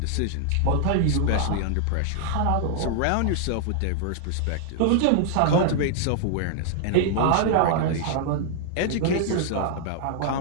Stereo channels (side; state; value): both; different; correlation -0.01